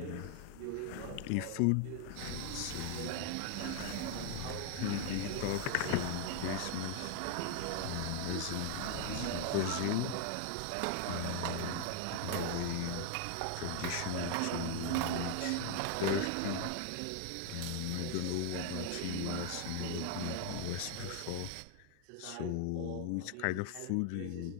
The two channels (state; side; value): different; both; correlation 0.00